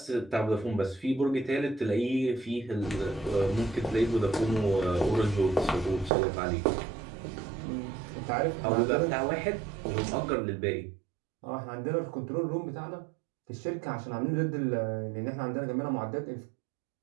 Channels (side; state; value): left; drops out; at 6.1 s